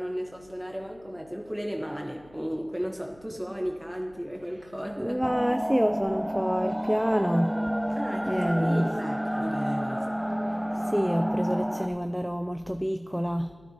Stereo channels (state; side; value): noise; left; hum, 26 dB below the sound